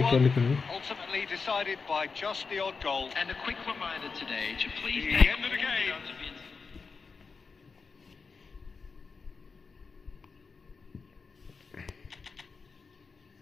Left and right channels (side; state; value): right; quieter; 4.9 dB